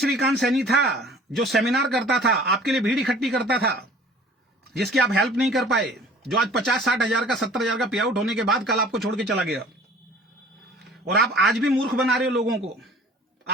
सैनी था जो सेमिनार करता था, आपके लिए भीड़ इकट्ठी करता था, जिसकी आप हेल्प नहीं कर पाए, जो आज 50-60 हजार का 70 हजार का पे आउट होने के बाद कल आपको छोड़ के चला गया। और आप आज भी मूर्ख बना रहे हो लोगों को।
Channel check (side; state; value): both; normal; correlation 0.49